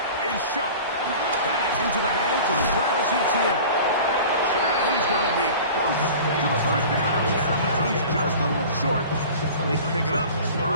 is shot. That's into the hands of Travis Etienne. And he's going to be close to the first down. Out of bounds, just a little short. They can pick it up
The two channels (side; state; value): both; inverted; correlation -0.40